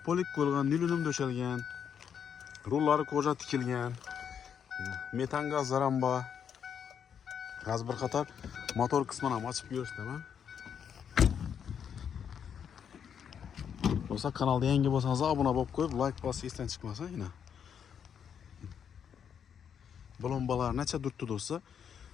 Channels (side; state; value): right; quieter; 7.9 dB